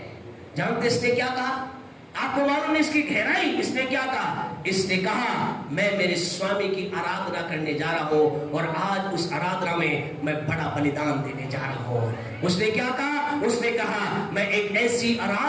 जानते इसने क्या कहा? आपको मालूम है इसकी गहराई? इसने क्या कहा? इसने कहा मैं मेरे स्वामी की आराधना करने जा रहा हूं और आज उस आराधना में मैं बड़ा बलिदान देने जा रहा हूं। उसने क्या कहा? उसने कहा मैं एक ऐसी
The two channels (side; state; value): both; identical; correlation 1.00